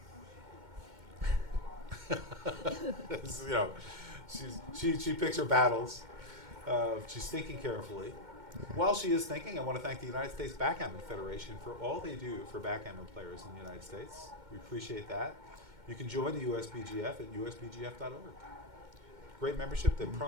This is, she picks her battles. She's thinking carefully. While she is thinking, I want to thank the United States Backgammon Federation for all they do for backgammon players in the United States. We appreciate that. You can join the USBGF at usbgf.org. Great membership. The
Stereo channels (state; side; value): late; left; 2.2 ms